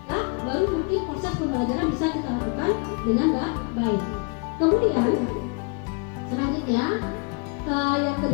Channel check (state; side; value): quieter; right; 34.2 dB